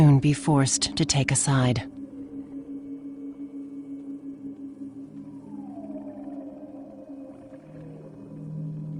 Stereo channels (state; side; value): identical; both; correlation 1.00